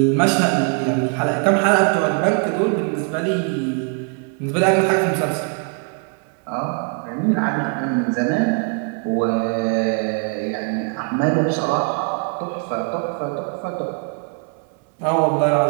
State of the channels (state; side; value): quieter; left; 40.0 dB